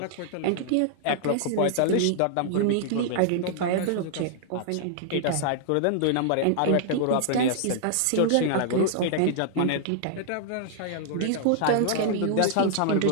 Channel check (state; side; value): different; both; correlation -0.01